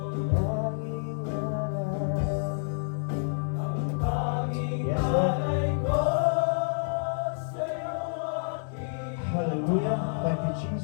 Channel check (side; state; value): right; silent; 59 dB below the other